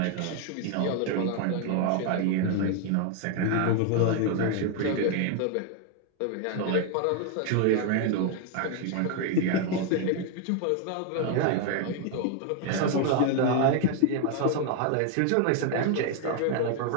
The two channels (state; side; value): different; both; correlation 0.01